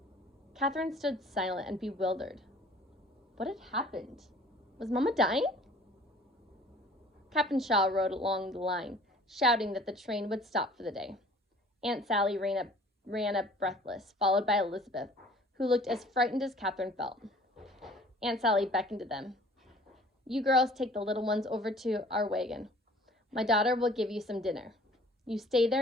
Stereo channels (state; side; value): normal; both; correlation 0.51